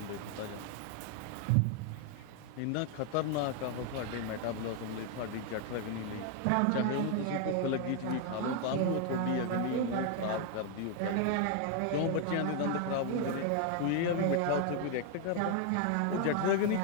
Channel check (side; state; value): both; different; correlation 0.00